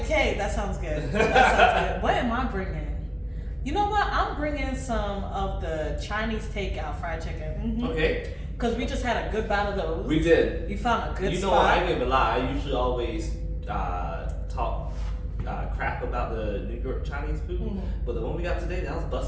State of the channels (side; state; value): both; identical; correlation 1.00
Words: okay, that sounds good. That sounds good. What am I bringing? You know what? I'm bringing some of the Chinese takeout fried chicken. Mm-hmm. Okay. Because we just had a good bout of those. We did. You found a good You know, spot. I ain't even lie. I usually always talk crap about the New York Chinese food, but the one we got today, that was